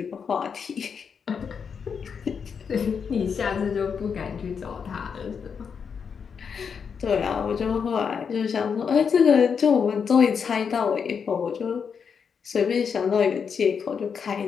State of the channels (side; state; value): right; quieter; 6.5 dB